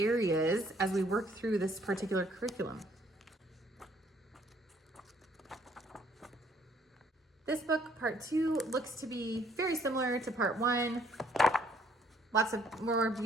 as we work through this particular curriculum. This book, part 2, looks to be very similar to part 1. Lots of more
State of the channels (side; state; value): both; normal; correlation 0.64